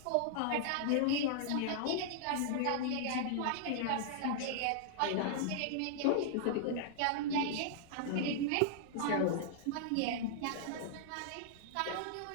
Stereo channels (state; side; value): different; both; correlation -0.01